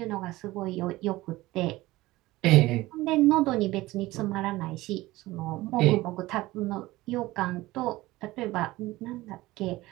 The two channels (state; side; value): quieter; left; 18.5 dB